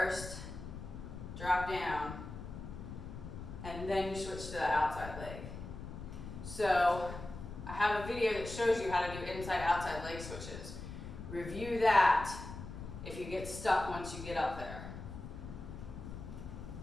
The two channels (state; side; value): noise; left; rumble, 10 dB below the sound